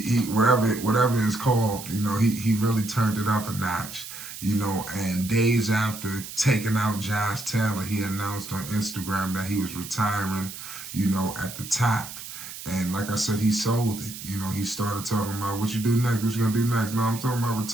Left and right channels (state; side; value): noise; right; hiss, 11 dB below the sound